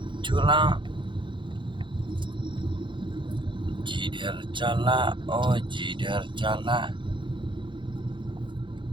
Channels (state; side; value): late; left; 0.23 ms